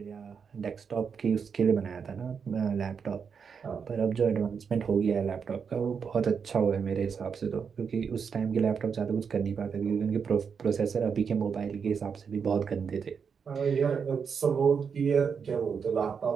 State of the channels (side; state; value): left; quieter; 6.3 dB